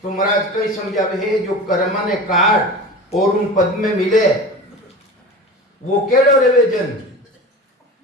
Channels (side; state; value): both; normal; correlation 0.33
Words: तो महाराज कई समझावे है, जो कर्म ने काट और उन पद में मिले, वो केड़ो रेवे जन।